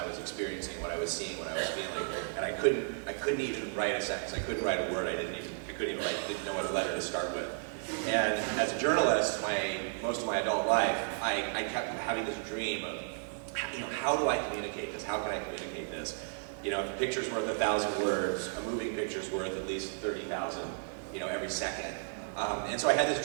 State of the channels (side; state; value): left; silent; 55 dB below the other